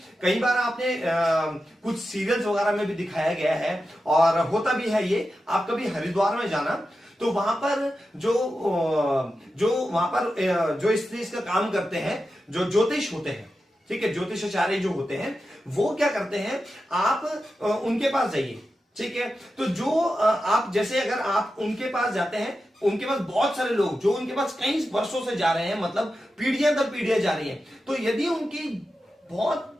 कई बार आपने कुछ सीरियल्स वगैरह में भी दिखाया गया है और होता भी है ये। आप कभी हरिद्वार में जाना तो वहां पर जो इस चीज का काम करते हैं, जो ज्योतिष होते हैं, ठीक है, ज्योतिषाचार्य जो होते हैं, वो क्या करते हैं, आप उनके पास जाइए। ठीक है, तो जो आप जैसे अगर आप उनके पास जाते हैं, उनके पास बहुत सारे लोग जो उनके पास कई वर्षों से जा रहे हैं, मतलब पीढ़ियां दर पीढ़ियां जा रही हैं, तो यदि उनकी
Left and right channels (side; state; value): both; normal; correlation 0.91